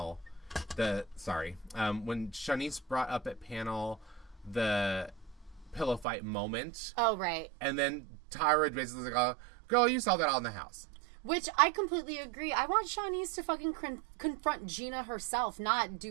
when Shanice brought up at panel the pillow fight moment. Oh, right. And then Tyra basically was like, oh, girl, you saw that all in the house. Which I completely agree. I want Shanice to fucking confront Gina herself, not do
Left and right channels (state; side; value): drops out; left; at 6.1 s